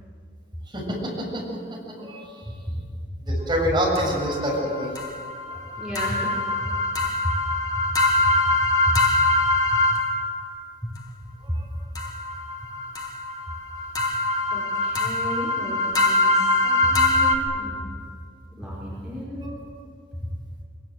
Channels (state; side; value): normal; both; correlation -0.15